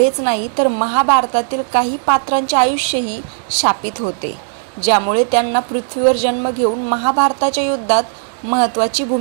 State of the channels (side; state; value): left; silent; digital silence